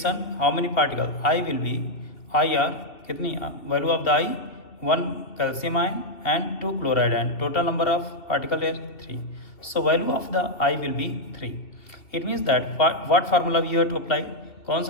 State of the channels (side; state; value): right; late; 2.6 ms